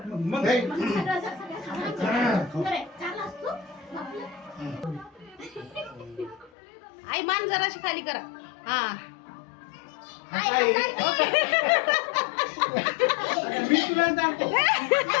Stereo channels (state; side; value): drops out; right; at 6.5 s